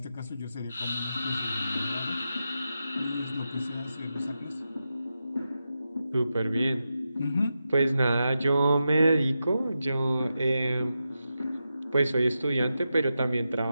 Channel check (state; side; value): inverted; both; correlation -0.89